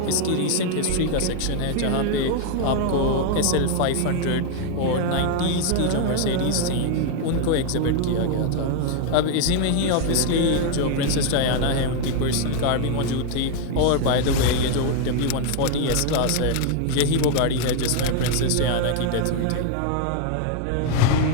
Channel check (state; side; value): different; both; correlation 0.00